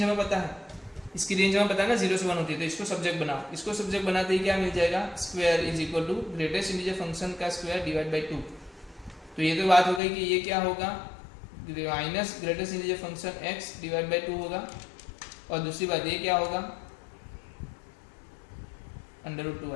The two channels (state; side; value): drops out; right; at 10.0 s